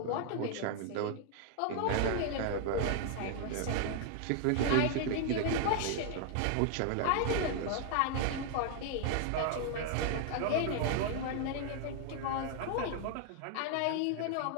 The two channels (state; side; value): different; both; correlation 0.00